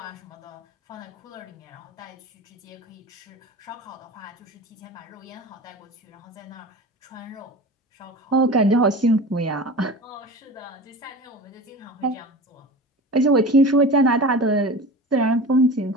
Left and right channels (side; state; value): both; normal; correlation 0.34